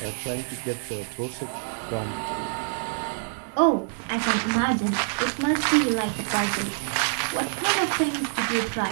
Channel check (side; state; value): left; silent; digital silence